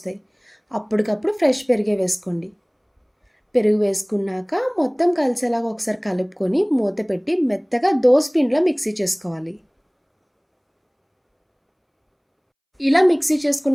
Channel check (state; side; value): identical; both; correlation 1.00